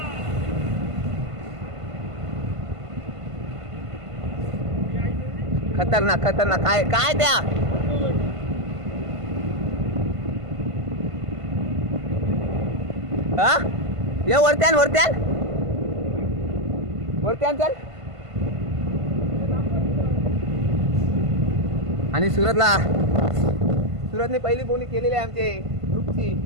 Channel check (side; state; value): left; late; 1.5 ms